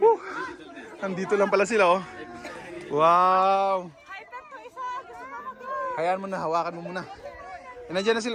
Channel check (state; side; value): identical; both; correlation 1.00